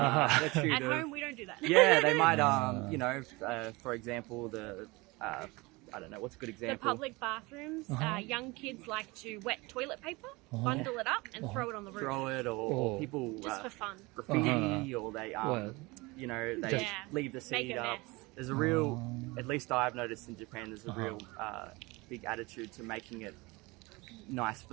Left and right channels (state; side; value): quieter; left; 23.9 dB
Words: At of, home, we don't do that. yeah, they might, for example, I don't know, what's a good The example? public bathrooms, young kids like to wet toilet paper, bundle it up, and throw it on the roof. Throw it, or people Just for fun. graffiti, or they, Well, they Just leave the make seat a up. mess. There's a real, at least I've noticed in Japan, there's a real big attitude to making it nice